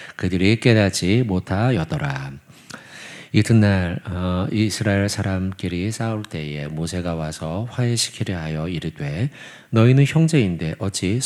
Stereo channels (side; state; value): both; identical; correlation 1.00